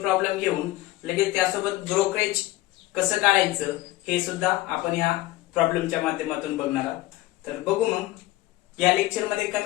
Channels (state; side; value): quieter; right; 17.5 dB